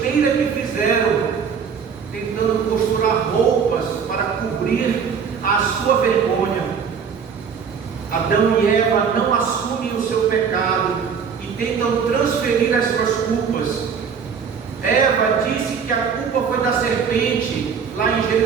que fizeram, tentando costurar roupas para cobrir a sua vergonha. Adão e Eva não assumem o seu pecado e tentam transferir as suas culpas. Eva disse que a culpa foi da serpente, lá em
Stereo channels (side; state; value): left; quieter; 6.5 dB